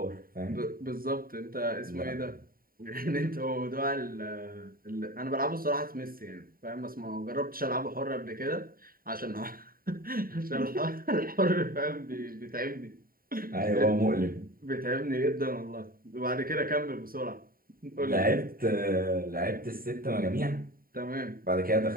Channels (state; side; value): late; left; 0.42 ms